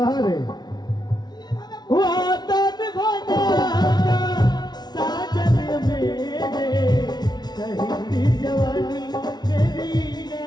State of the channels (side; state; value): right; late; 0.20 ms